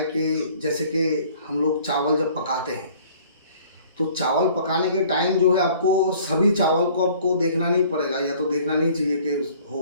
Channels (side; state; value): both; inverted; correlation -0.54